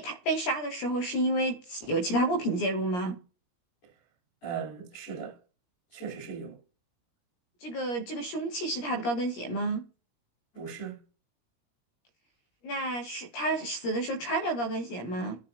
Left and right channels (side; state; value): right; late; 17 ms